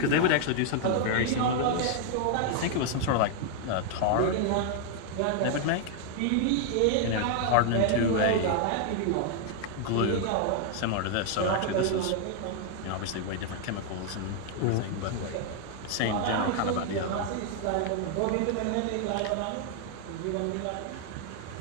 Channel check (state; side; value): different; both; correlation 0.00